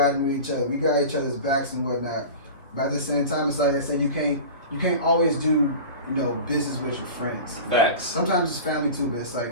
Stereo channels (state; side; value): inverted; both; correlation -0.33